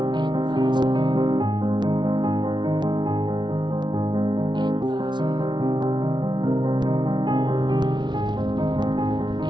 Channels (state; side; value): late; left; 0.22 ms